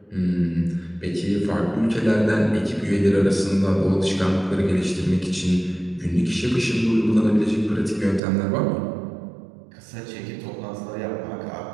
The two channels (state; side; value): drops out; left; at 8.2 s